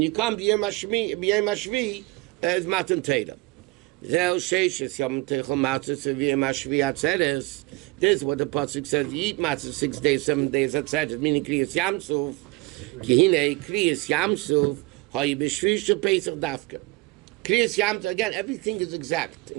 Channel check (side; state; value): left; quieter; 23.3 dB